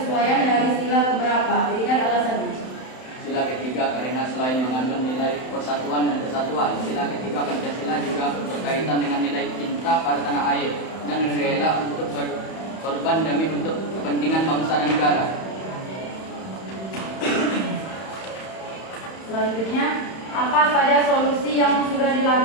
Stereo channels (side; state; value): right; late; 31 ms